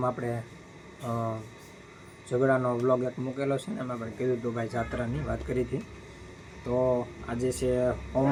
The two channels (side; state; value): both; identical; correlation 1.00